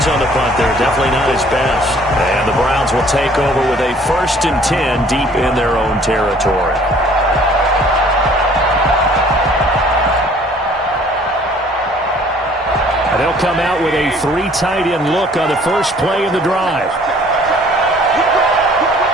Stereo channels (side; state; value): both; normal; correlation 0.56